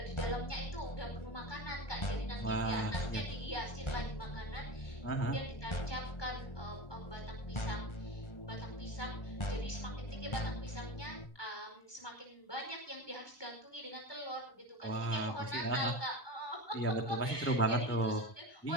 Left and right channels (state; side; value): late; right; 1.2 ms